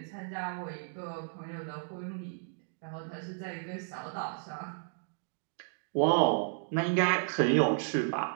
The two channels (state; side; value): silent; left; digital silence